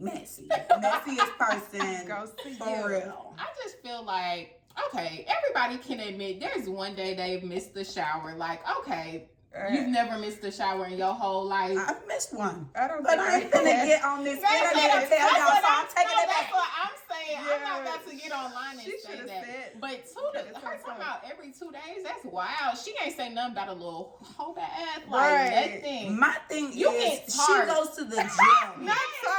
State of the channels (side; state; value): both; identical; correlation 1.00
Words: Messiest person Goes to for you. real. I just feel like, okay, everybody can admit there's one day they've missed the shower. Like, okay, you've never missed a shower in your whole life. I've missed one. I don't But think I ain't finna get on this internet and tell y'all, so I'm taking it That's back. what I'm saying. Yeah. I'm not about to get online and She say should've that. said- But her talking about every 2 days, that's wild. She ain't say nothing about a little whole ass, like Right. nothing. My thing You is, get she tired. goes to the gym. Not